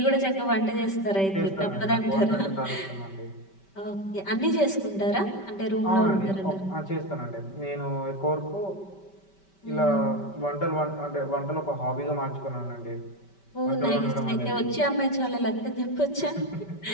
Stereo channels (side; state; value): right; late; 5.2 ms